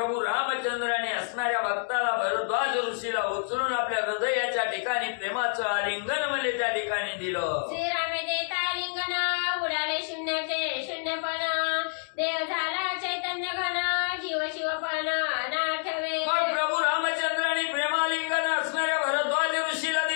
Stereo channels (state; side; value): silent; right; digital silence